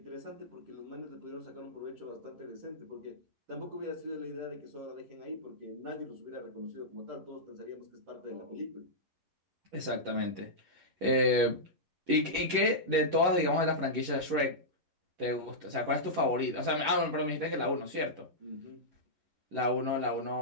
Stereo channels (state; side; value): late; left; 11 ms